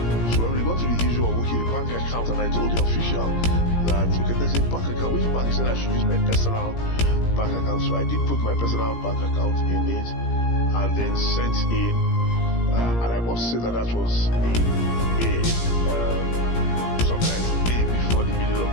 So when we got to the issue of the bank account and I told the official that, okay, there's a bank account. Which bank? He said I should use my personal bank account. So I did put my personal bank account in it and then sent in. And I must say that was in May, sometimes May before the middle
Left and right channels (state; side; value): late; right; 17 ms